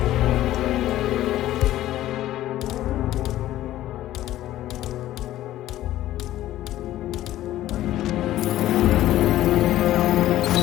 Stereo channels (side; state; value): right; quieter; 14.1 dB